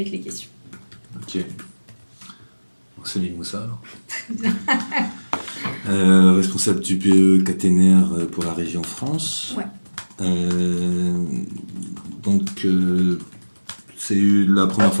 les questions. Ok. C'est Mimoussa alors. Responsable du BE caténaire pour la région France. Ouais. Donc, c'est la première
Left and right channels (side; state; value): both; inverted; correlation -1.00